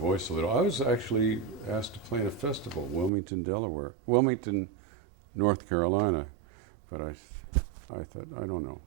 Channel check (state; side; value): drops out; left; at 3.1 s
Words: a little. I was actually asked to play in a festival, Wilmington, North Carolina. But I thought, I don't know.